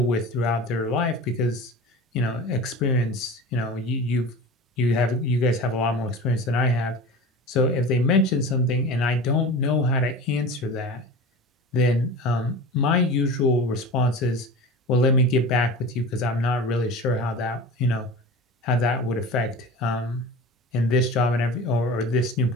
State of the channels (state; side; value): normal; both; correlation 0.34